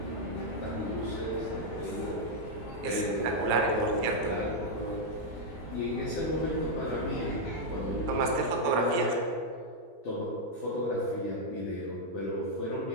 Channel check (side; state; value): both; normal; correlation -0.02